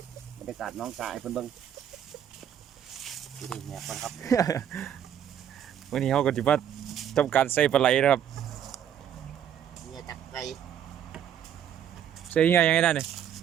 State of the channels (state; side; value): quieter; left; 9.5 dB